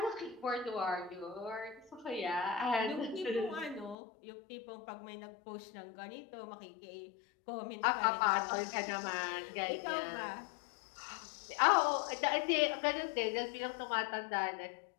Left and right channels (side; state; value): right; drops out; at 4.0 s